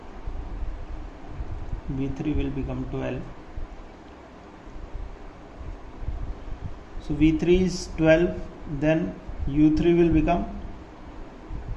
v3 will become 12, so v3 is 12, then u3 will become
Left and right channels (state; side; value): identical; both; correlation 1.00